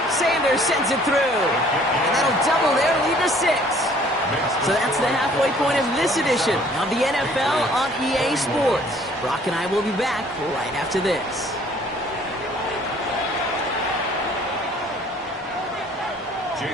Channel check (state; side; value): normal; both; correlation 0.57